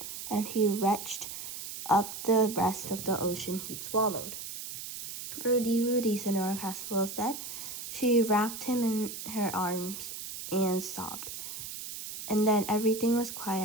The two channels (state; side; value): noise; right; hiss, 8 dB below the sound